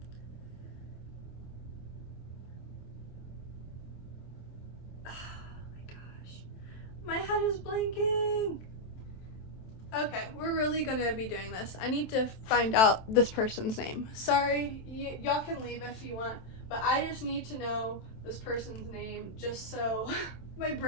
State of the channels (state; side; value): late; right; 27 ms